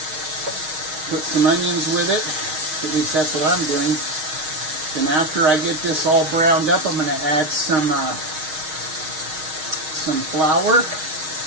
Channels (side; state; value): left; late; 6.4 ms